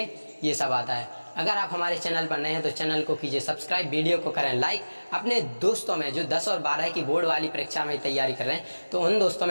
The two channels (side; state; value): both; inverted; correlation -1.00